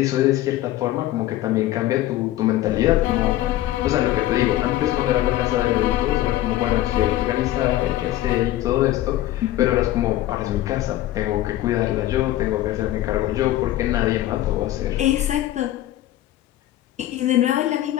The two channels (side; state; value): right; quieter; 14.6 dB